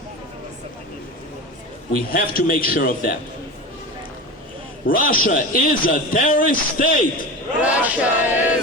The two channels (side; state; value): both; normal; correlation 0.27